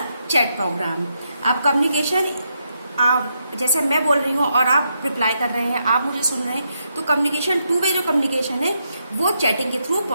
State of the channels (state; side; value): inverted; both; correlation -0.81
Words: chat program. आप communication जैसे मैं बोल रही हूँ और आप reply कर रहे हैं, आप मुझे सुन रहे हैं, तो कम्युनिकेशन टू वे जो कम्युनिकेशन है वो चैटिंग के थ्रू